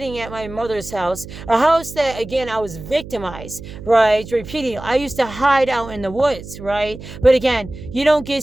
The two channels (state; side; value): noise; right; hum, 13 dB below the sound